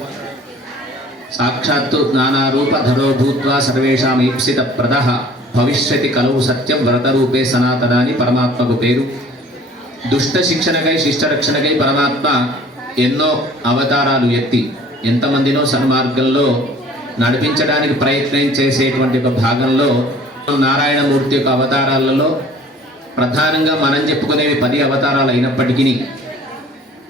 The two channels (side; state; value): both; normal; correlation 0.50